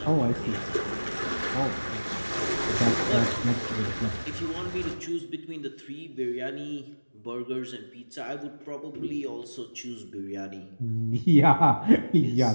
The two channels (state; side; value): inverted; both; correlation -1.00